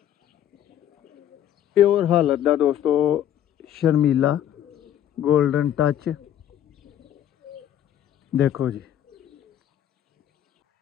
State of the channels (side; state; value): right; quieter; 10.8 dB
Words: प्योर हालत दा दोस्तों शर्मीला गोल्डन टच देखो जी।